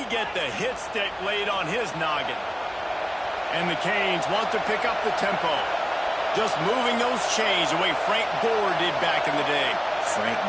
get the hit stick laid on his noggin. And the Canes want to pick up the tempo. Just moving those chains the way Frank Gore did back in the day. Frank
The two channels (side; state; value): both; identical; correlation 1.00